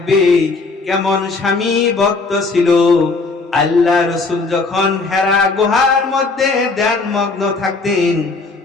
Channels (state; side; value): quieter; right; 3.9 dB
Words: কেমন স্বামী ভক্ত ছিল। আল্লাহ রাসূল যখন হেরা গুহার মধ্যে ধ্যানমগ্ন থাকতেন,